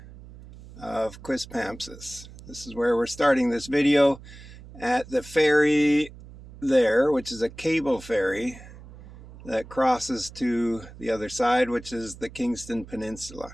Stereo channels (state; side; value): noise; right; hum, 18 dB below the sound